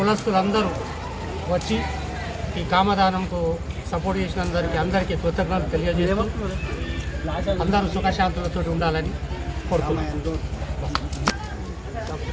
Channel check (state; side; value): identical; both; correlation 1.00